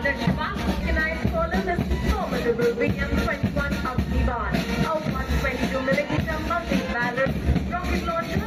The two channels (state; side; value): identical; both; correlation 1.00